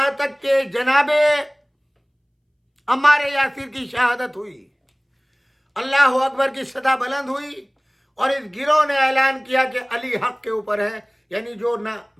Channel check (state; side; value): identical; both; correlation 1.00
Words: تک کہ جناب عمار یاسر کی شہادت ہوئی، اللہ اکبر کی صدا بلند ہوئی، اور اس گروہ نے اعلان کیا کہ علی حق کے اوپر ہے، یعنی جو نہ